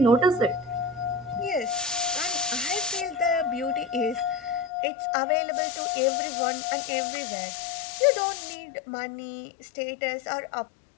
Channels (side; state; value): right; drops out; at 4.7 s